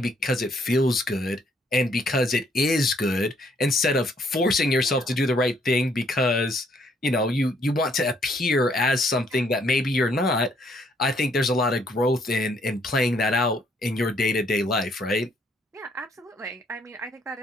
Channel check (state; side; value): normal; both; correlation 0.68